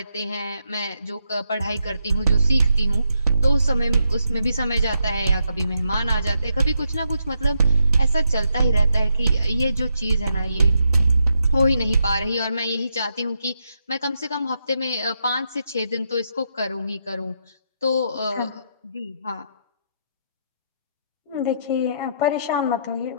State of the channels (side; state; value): both; inverted; correlation -0.80